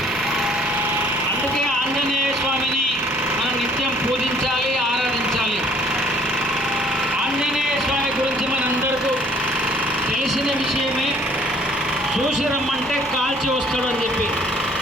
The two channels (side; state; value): both; normal; correlation 0.58